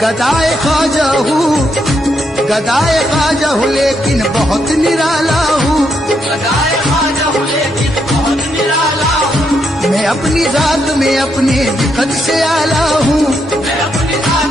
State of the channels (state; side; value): normal; both; correlation 0.79